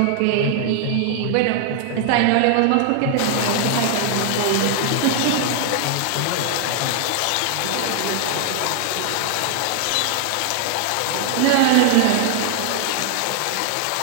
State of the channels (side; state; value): both; different; correlation 0.00